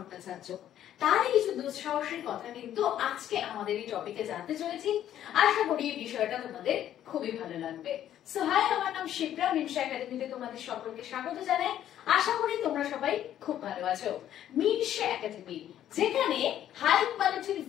তারই কিছু দুঃসাহসের কথা কিন্তু আজকে আমাদের এই টপিকে জানতে চলেছি। আশা করি এই বিষয়টা তোমাদের খুবই ভালো লাগবে। সো হাই, আমার নাম শিপ্রা, মিনসা একাডেমিতে তোমাদের সকলকে স্বাগত জানাই। আশা করি তোমরা সবাই খুব ভালো আছো। মিনসা একাডেমি, যেখানে হাই কোয়ালিটির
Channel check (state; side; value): quieter; right; 11.3 dB